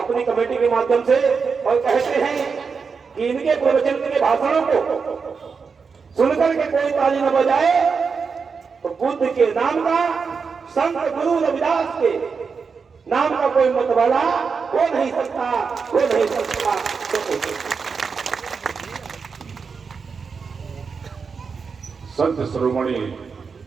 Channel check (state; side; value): quieter; left; 5.4 dB